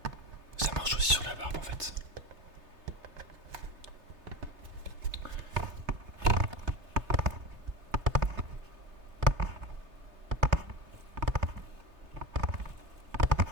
aussi sur la barbe en fait.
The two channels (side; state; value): left; late; 3.3 ms